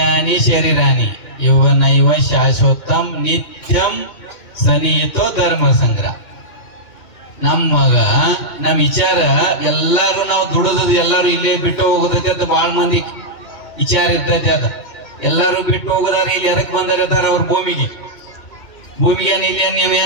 ಶರೀರಾನಿ ಯೌವನೈವ ಶಾಶ್ವತಂ ನಿತ್ಯಂ ಸನಿಹಿತೋ ಧರ್ಮ ಸಂಗ್ರಹ. ನಮ್ಮ ವಿಚಾರ ಎಲ್ಲಾರು ನಾವು ದುಡಿದ್ ಎಲ್ಲಾರು ಇಲ್ಲೇ ಬಿಟ್ಟು ಹೋಗೋದೈತೆ ಅಂತ ಬಹಳ ಮಂದಿ ವಿಚಾರ ಇರ್ತೈತೆ. ಅದ ಎಲ್ಲಾರು ಬಿಟ್ಟು ಹೋಗೋದಾರ ಇಲ್ಲಿ ಎದಕ್ ಬಂದಿರ್ತಾರ ಅವ್ರ ಭೂಮಿಗೆ ಇಲ್ಲಿ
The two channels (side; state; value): right; late; 2.7 ms